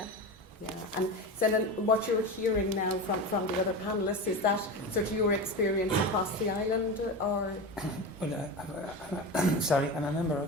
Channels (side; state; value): both; normal; correlation 0.24